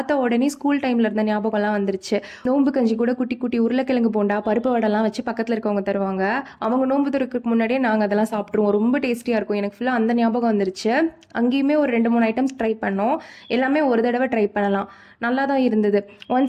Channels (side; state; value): both; identical; correlation 1.00